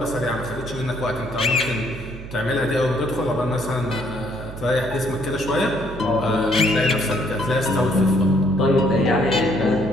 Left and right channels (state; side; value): noise; right; hum, 12 dB below the sound